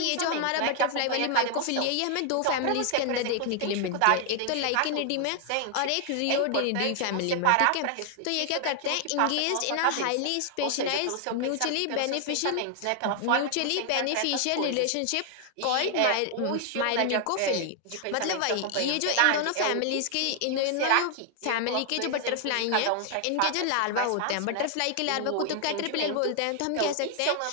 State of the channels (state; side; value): different; both; correlation 0.00